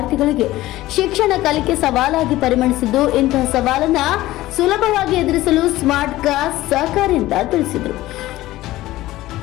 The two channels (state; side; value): quieter; right; 16.5 dB